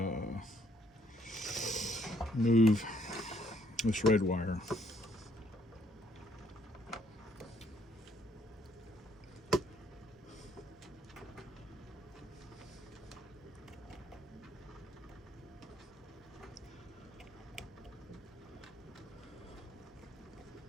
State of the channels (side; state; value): both; normal; correlation 0.67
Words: move this red wire.